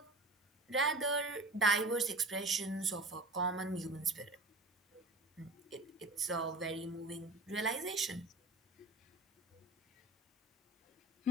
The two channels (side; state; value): both; normal; correlation 0.36